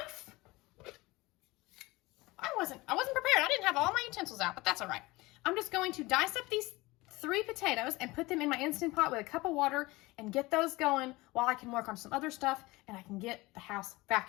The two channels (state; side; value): quieter; right; 21.4 dB